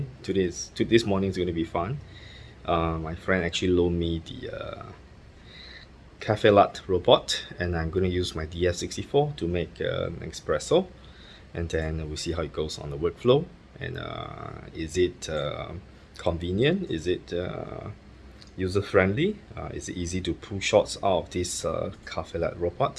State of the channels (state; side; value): identical; both; correlation 1.00